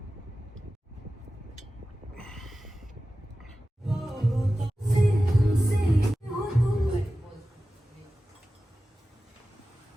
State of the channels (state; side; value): normal; both; correlation 0.95